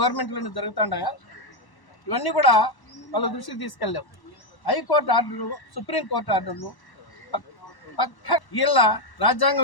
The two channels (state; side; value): late; right; 1.1 ms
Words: జరుగుతుంటాయా? ఇవన్నీ కూడా వాళ్ళ దృష్టికి తీసుకెళ్ళాం. హైకోర్టు ఆర్డర్లు, సుప్రీంకోర్టు ఆర్డర్లు పక్క వీళ్ళ